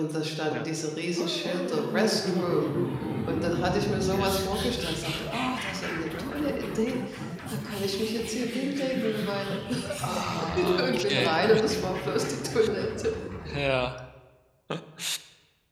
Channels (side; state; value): both; identical; correlation 1.00